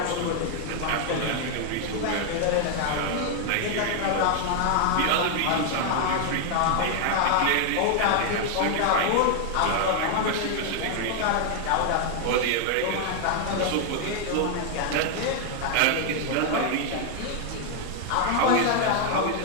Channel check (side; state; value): both; different; correlation 0.00